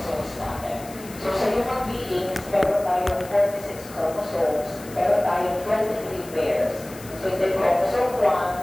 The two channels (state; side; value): noise; left; hiss, 18 dB below the sound